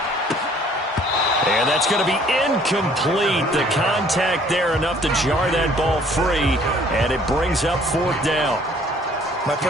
And that's going to be incomplete. The contact there enough to jar that ball free, and it brings up fourth down. My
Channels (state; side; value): normal; both; correlation 0.58